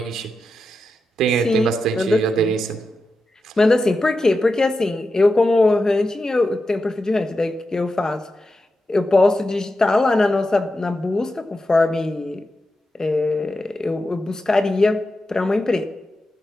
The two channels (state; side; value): normal; both; correlation 0.90